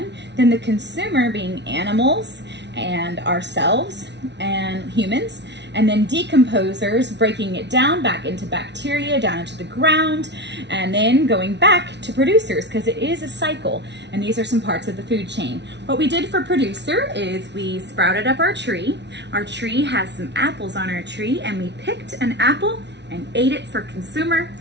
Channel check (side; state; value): left; late; 0.50 ms